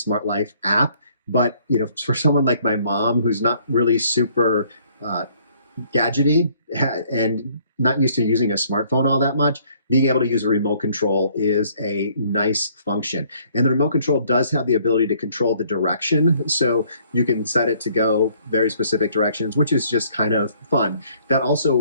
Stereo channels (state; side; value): inverted; both; correlation -0.62